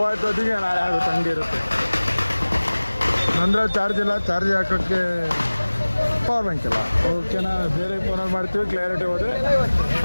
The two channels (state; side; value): inverted; both; correlation -1.00